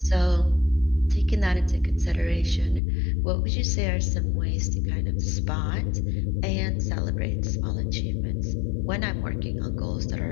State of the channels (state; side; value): drops out; right; at 2.8 s